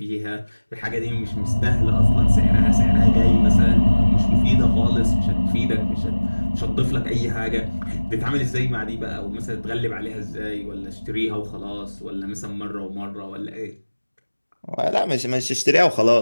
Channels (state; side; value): inverted; both; correlation -1.00